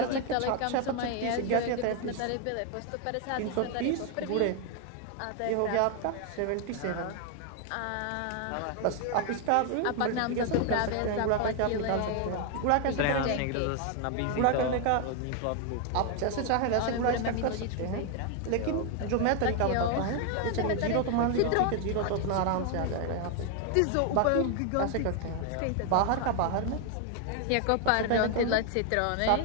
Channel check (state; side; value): different; both; correlation 0.00